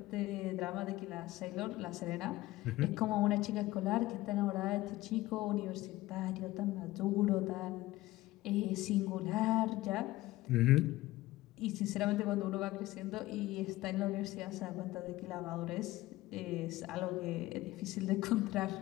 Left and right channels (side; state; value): right; quieter; 17.6 dB